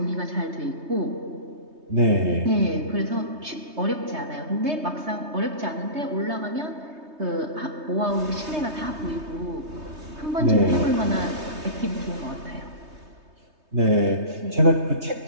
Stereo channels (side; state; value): left; late; 3.2 ms